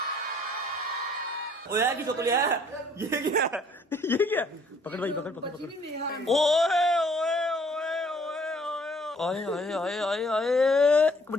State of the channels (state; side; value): normal; both; correlation 0.60